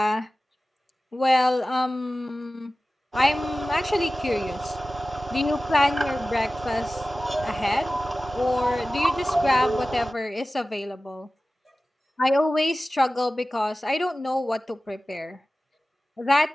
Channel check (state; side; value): normal; both; correlation 0.96